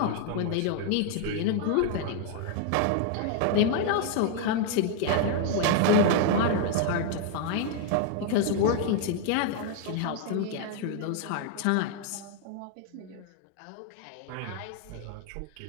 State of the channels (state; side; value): different; both; correlation 0.00